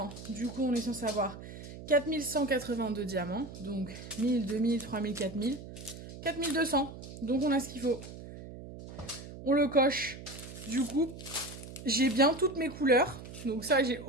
Du coup, on est censé avoir 4182 diamants. Donc 1000, 2000, 3000, 4000. 4200. Donc on a ce qu'il faut. On le coche. Du coup, j'ai bien toutes mes couleurs. Donc ça, j'ai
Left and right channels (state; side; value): noise; right; hum, 13 dB below the sound